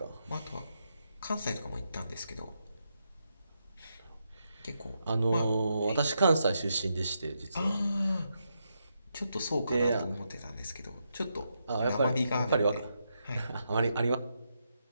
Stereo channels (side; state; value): both; inverted; correlation -0.83